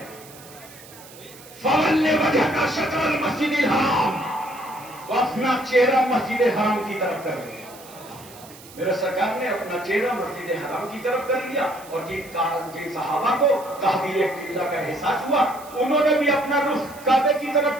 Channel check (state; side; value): noise; right; hiss, 20 dB below the sound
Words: فَوَلِّ وَجْهَكَ شَطْرَ الْمَسْجِدِ الْحَرَامِ، وہ اپنا چہرہ مسجد حرام کی طرف کر لیا۔ میرے سرکار نے اپنا چہرہ مسجد حرام کی طرف کر لیا، اور جن صحابہ کو تحویل قبلہ کا احساس ہوا انہوں نے بھی اپنا رخ کعبے کی